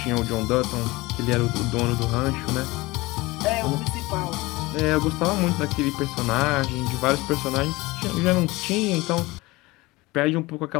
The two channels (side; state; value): right; quieter; 21.5 dB